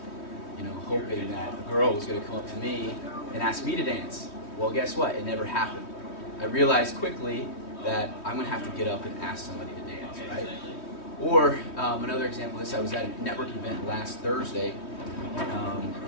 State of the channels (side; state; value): right; late; 3.2 ms